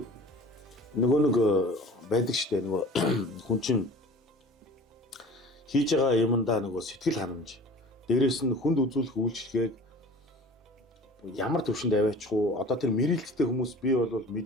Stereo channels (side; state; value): both; normal; correlation 0.42